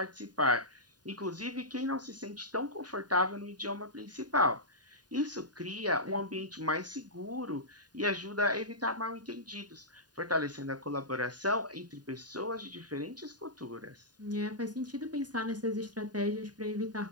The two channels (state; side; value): late; left; 0.69 ms